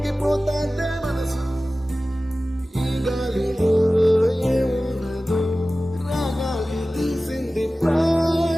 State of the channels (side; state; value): both; normal; correlation 0.96